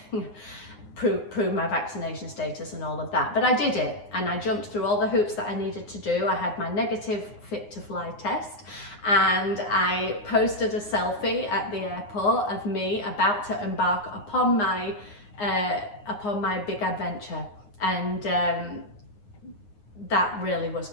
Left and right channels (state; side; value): late; right; 9.7 ms